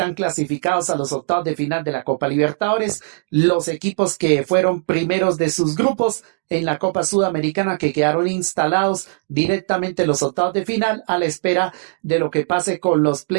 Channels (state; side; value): silent; left; digital silence